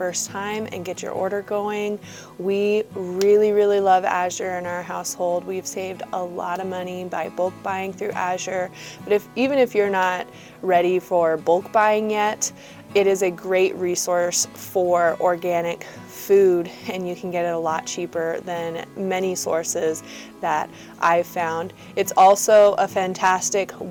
time and get your order going. We really love Azure in our household. We've saved a lot of money by bulk buying through Azure. But even if you're not ready for bulk buying yet, it is a great resource for organic food, and you can get it a lot cheaper than many sources that I've found. It's also a fantastic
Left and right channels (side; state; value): both; identical; correlation 1.00